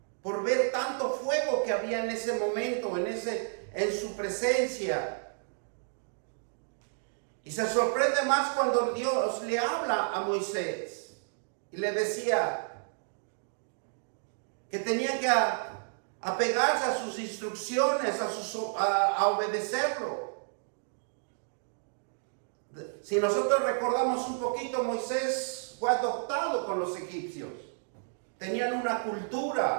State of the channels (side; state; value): left; silent; digital silence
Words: por ver tanto fuego que había en ese momento, en su presencia. Y se sorprende más cuando Dios le habla a Moisés y le decía que tenía que apegarse a sus instrucciones, a obedecerlo. Si nosotros recordamos un poquito, Moisés fue adoptado con los egipcios. Tenían una